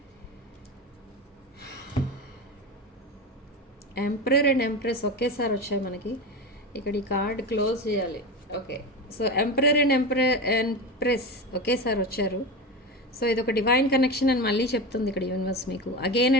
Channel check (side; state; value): both; normal; correlation 0.23